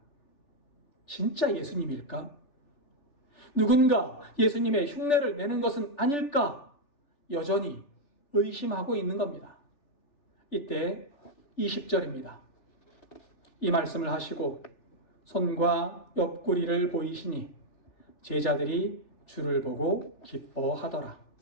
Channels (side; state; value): right; late; 3.4 ms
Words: 진짜 예수님일까? 누군가 예수님의 흉내를 내는 것은 아닐까? 여전히 의심하고 있는 겁니다. 이때 20절입니다. 이 말씀을 하시고 손과 옆구리를 보이시니 제자들이 주를 보고 기뻐하더라.